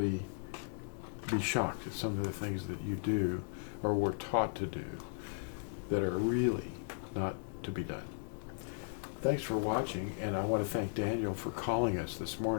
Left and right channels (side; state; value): right; silent; digital silence